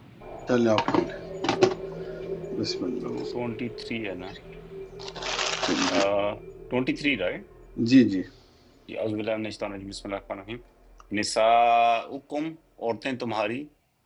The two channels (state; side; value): identical; both; correlation 1.00